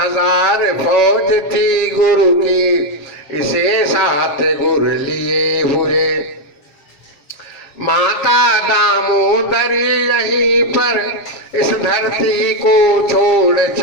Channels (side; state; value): right; late; 7.3 ms